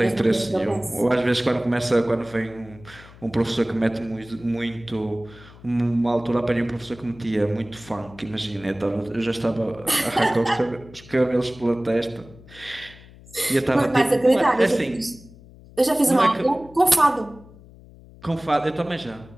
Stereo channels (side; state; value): left; noise; hum, 21 dB below the sound